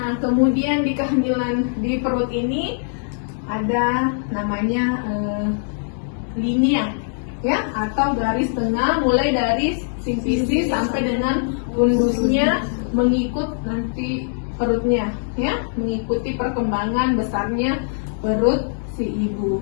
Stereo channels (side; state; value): right; silent; digital silence